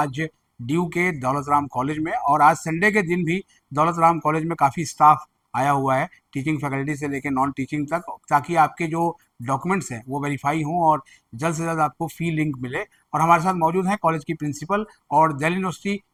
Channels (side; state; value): both; identical; correlation 1.00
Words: ड्यू के दौलत राम कॉलेज में। और आज संडे के दिन भी दौलत राम कॉलेज में काफ़ी स्टाफ आया हुआ है, टीचिंग फैकल्टी से लेकर नॉन टीचिंग तक, ताकि आपके जो डॉक्यूमेंट्स हैं वो वेरीफाई हों और जल्द से जल्द आपको फी लिंक मिले। और हमारे साथ मौजूद हैं कॉलेज की प्रिंसिपल और दिल्ली यूनिवर्सिटी